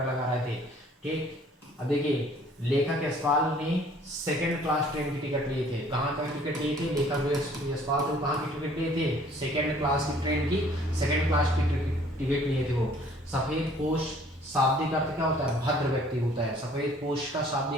लगा रहे थे, ठीक। अब देखिए लेखक यशपाल ने सेकंड क्लास ट्रेन की टिकट लिए थे। कहाँ का टिकट लिए थे, लेखक जो यशपाल थे कहाँ की टिकट लिए थे, सेकंड क्लास की ट्रेन की सेकंड क्लास की टिकट लिए थे वो। सफेद पोश शाब्दिक अर्थ क्या होता है, भद्र व्यक्ति होता है। सफेद पोश का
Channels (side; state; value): both; normal; correlation 0.56